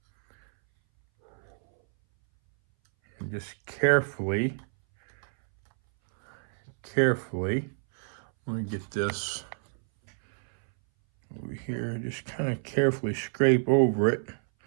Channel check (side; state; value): left; silent; 59 dB below the other